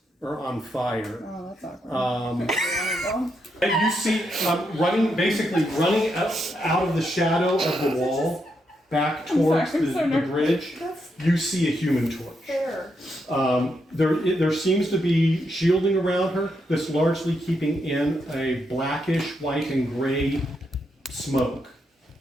are on fire. Oh, that's awkward. And you see basically running out of the shadow of the wall, back towards sorry, I'm so the nervous. bridge. That's You see a human torch. fair. There seems to be shielding around her that's largely keeping in a blackish, white, and gray smoke.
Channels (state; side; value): normal; both; correlation 0.81